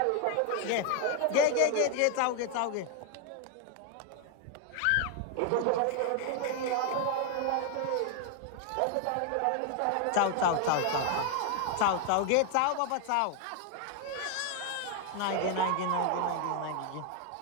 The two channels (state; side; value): different; both; correlation 0.01